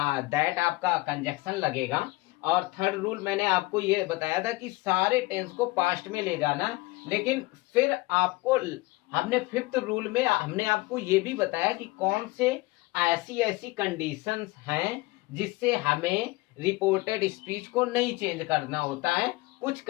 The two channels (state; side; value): quieter; right; 21.6 dB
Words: आपका कंजक्शन लगेगा, और थर्ड रूल मैंने आपको ये बताया था कि सारे टेंस को पास्ट में ले जाना। लेकिन फिर आपको हमने फिफ्थ रूल में हमने आपको ये भी बताया कि कौन से ऐसी कंडीशंस हैं जिससे हमें रिपोर्टेड स्पीच को नहीं चेंज करना होता है। कुछ